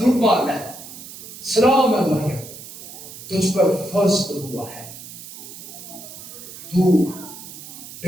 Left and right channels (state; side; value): noise; right; hiss, 14 dB below the sound